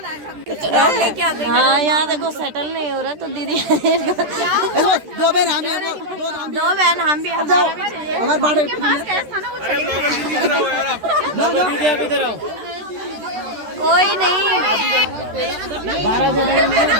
हाँ यहाँ देखो सेटल नहीं हो रहा, तो दीदी दो बहन हम भी दो बहन हम भी, हमारा भी चाहिए। हमारे बाड़े कोई नहीं, 12 जने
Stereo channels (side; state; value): left; late; 13 ms